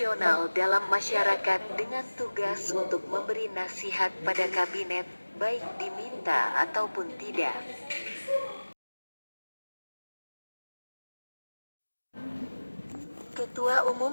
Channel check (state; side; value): inverted; both; correlation -1.00